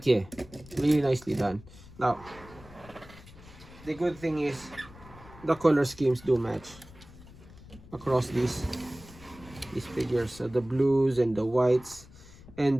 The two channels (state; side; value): noise; left; rumble, 20 dB below the sound